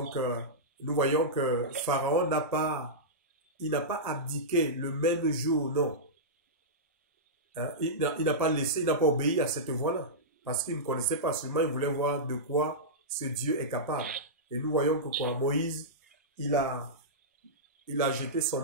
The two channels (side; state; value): both; normal; correlation -0.14